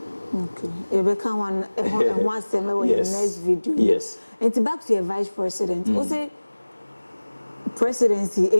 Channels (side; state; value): both; inverted; correlation -1.00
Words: Okay. You become one summer in the next video. Yes. And back to your vice president. Also, presidency